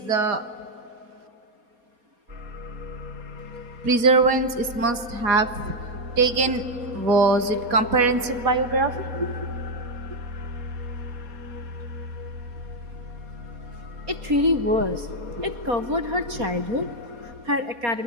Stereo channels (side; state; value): left; late; 4.2 ms